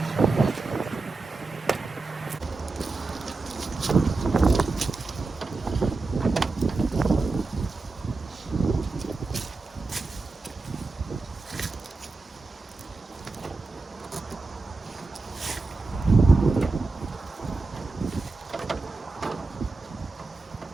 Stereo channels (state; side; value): quieter; left; 3.8 dB